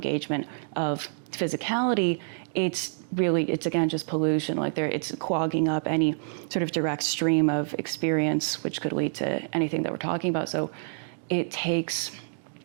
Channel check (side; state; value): left; silent; digital silence